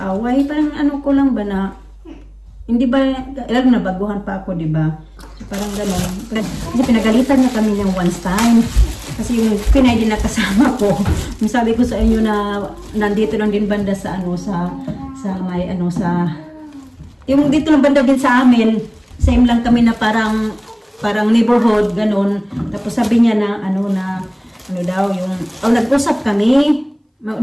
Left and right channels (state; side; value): identical; both; correlation 1.00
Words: Parang ko lang ba na, hindi ba, lalo na baguhan pa ako, diba? So, Parang gano'n. Kasi pinagalitan niya kami ng once time. Kasi yung Pinay din na kasama ko. Yung sabi ko sa inyo na nandito lang din banda sa ano sa may ano sa yung dito lang banda din sa amin. Same lang kami na parang neighborhood gano'n. Tapos sabi niya na ano daw yung nag-usap kami.